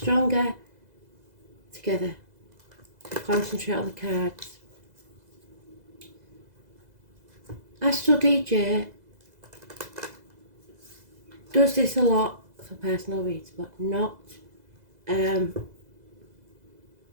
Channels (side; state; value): left; late; 2.0 ms